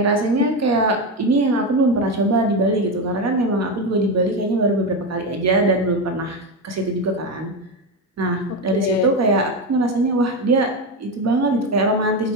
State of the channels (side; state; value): both; normal; correlation 0.14